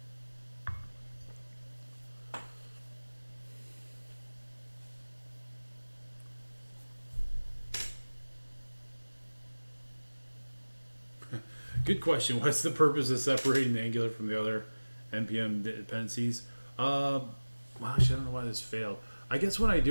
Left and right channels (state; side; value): inverted; both; correlation -1.00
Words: Good question. What's the purpose of separating the Angular from the other NPM dependencies? Well, actually, I don't know why this failed. I guess when I